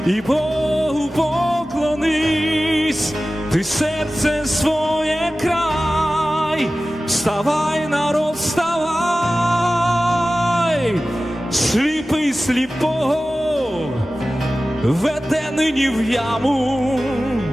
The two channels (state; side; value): normal; both; correlation 0.96